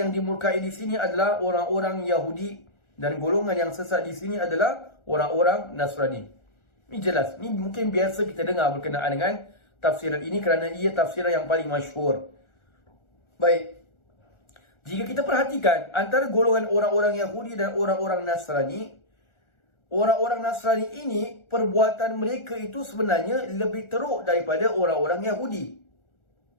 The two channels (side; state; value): right; late; 1.4 ms